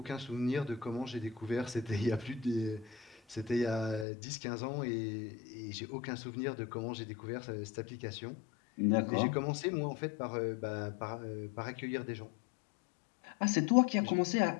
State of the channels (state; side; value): drops out; right; at 4.0 s